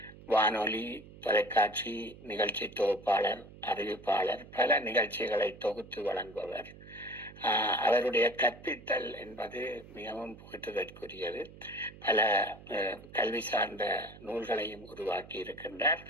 வானொலி, தொலைக்காட்சி நிகழ்ச்சி தொகுப்பாளர், அறிவிப்பாளர், பல நிகழ்ச்சிகளை தொகுத்து வழங்குபவர். அவருடைய கற்பித்தல் என்பது மிகவும் புகழ்வதற்குரியது. பல கல்வி சார்ந்த நூல்களையும் உருவாக்கி இருக்கின்றார்.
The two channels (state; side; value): noise; right; hum, 18 dB below the sound